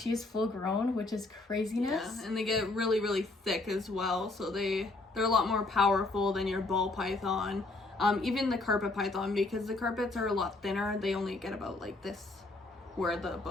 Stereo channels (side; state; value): right; quieter; 3.1 dB